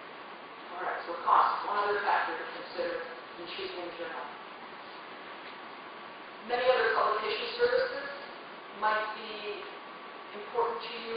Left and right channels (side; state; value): both; identical; correlation 1.00